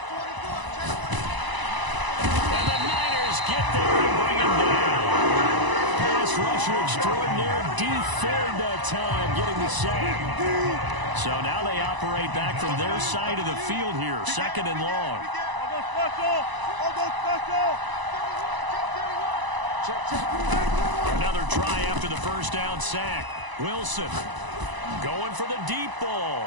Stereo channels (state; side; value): late; left; 1.0 ms